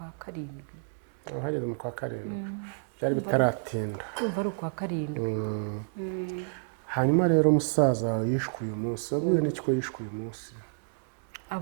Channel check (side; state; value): left; silent; digital silence